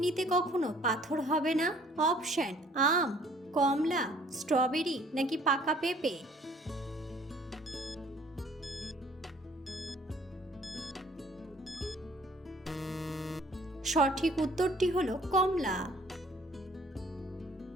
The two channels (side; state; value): both; normal; correlation 0.57